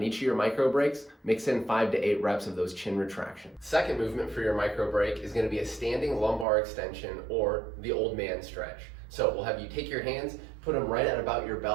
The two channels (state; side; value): drops out; left; at 6.5 s